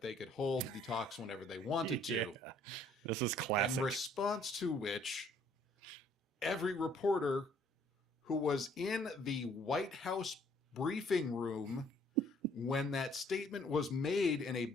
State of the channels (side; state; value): both; normal; correlation 0.61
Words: they could hold the talks whenever they wanted to. Yeah. This is classic. In response to which, every reporter who was in the White House briefing room when that statement was made in a